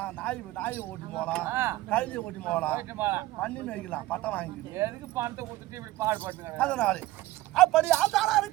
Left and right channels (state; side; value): quieter; left; 17.0 dB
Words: நாய் ஓட்டி போகலாம், கழுதி ஓட்டி போகலாம், பண்ணி மேய்க்கலாம், பட்டம் வாங்கிக்கலாம். எதுக்கு பணத்தை கொடுத்துட்டு இப்படி பாடுபட்டுங்க? அதனால அப்படி ஆதாரா